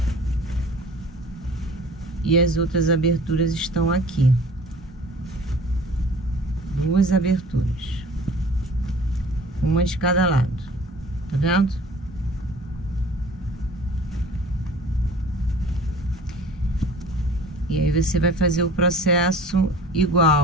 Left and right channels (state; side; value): normal; both; correlation 0.46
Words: E as outras aberturas estão aqui. 2 aberturas. Uma de cada lado. Tá vendo? E aí você vai fazer o processo